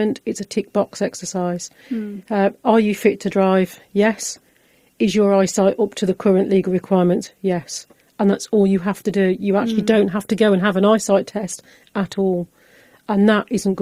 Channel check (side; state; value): both; identical; correlation 1.00